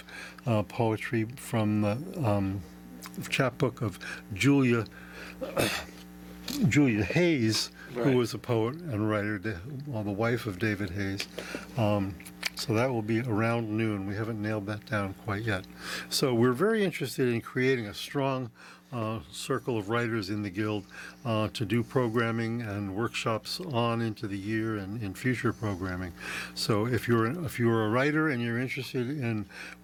poetry from the chapbook of Julia Hayes, right, who was a poet and writer, the wife of David Hayes. So that will be around noon. We haven't nailed that down quite yet. So we're very interested in creating a strong circle of writers in the Guild to do programming and workshops on into the year and in future programming. So if you're a writer and you're interested in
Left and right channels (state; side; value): identical; both; correlation 1.00